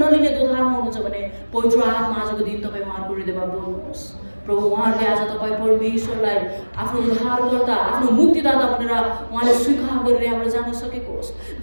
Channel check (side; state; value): both; inverted; correlation -1.00